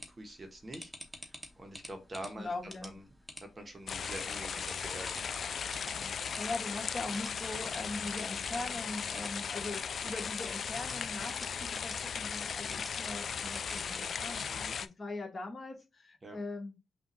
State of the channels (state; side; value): quieter; right; 4.5 dB